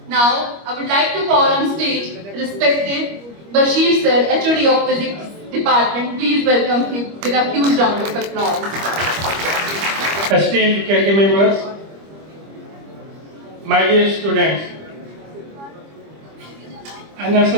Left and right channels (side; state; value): left; late; 25 ms